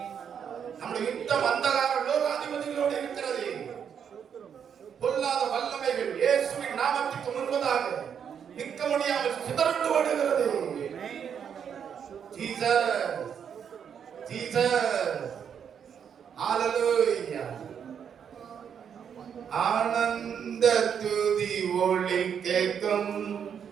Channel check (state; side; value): quieter; left; 7.8 dB